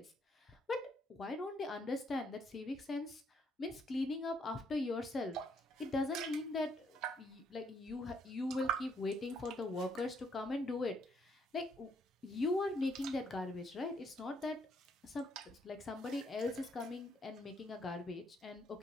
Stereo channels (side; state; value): both; normal; correlation 0.71